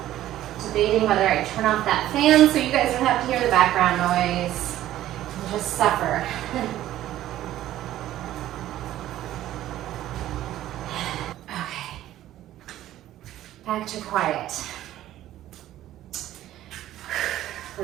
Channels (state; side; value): quieter; left; 13.5 dB